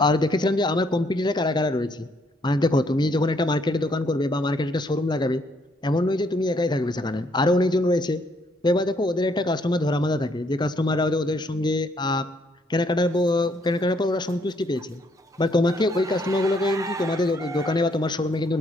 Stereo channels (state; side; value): normal; both; correlation 0.69